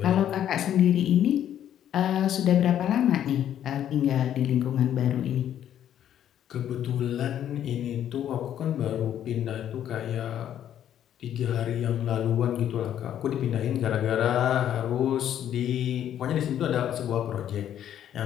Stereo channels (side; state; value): right; quieter; 10.5 dB